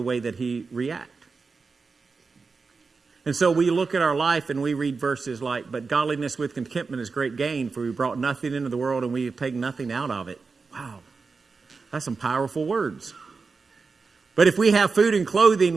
way that he reacted. And so we look at our life and we read verses like, but godliness with contentment is great gain, for we brought nothing into the world and we have taken nothing out of it. Wow. That's some powerful words. But if we have food and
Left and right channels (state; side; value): quieter; left; 4.6 dB